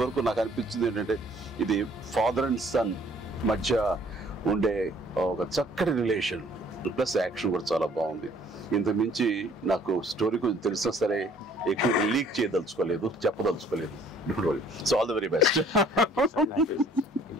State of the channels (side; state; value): both; normal; correlation 0.58